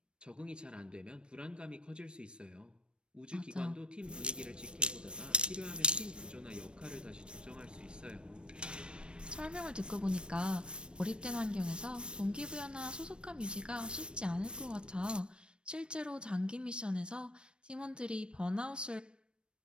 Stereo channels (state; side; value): late; left; 0.056 ms